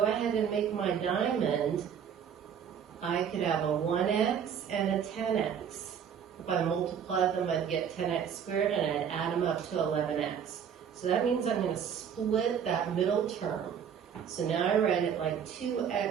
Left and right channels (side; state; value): left; quieter; 8.0 dB